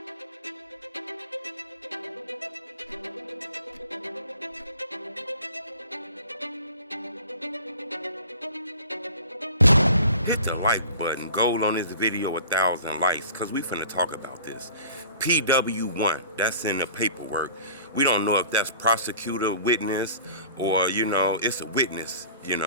Hit the like button, gold on this video 1,000 likes, cause we finna talk about this. PW1, that's in the paperwork. We don't know if that's prosecutor, witness, or it's a witness,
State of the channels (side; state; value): both; inverted; correlation -0.45